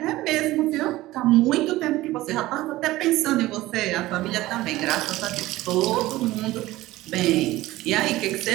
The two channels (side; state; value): left; quieter; 17.4 dB